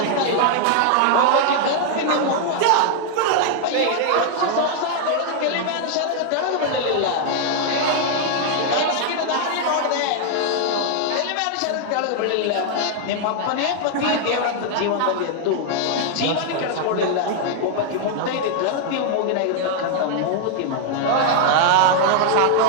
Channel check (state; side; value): different; both; correlation 0.00